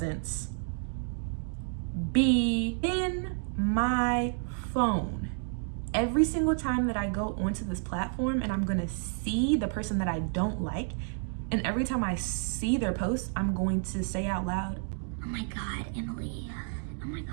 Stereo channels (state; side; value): silent; left; 56 dB below the other